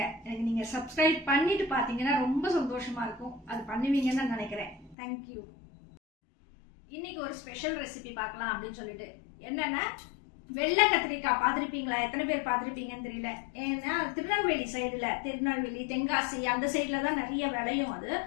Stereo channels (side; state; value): right; drops out; at 5.0 s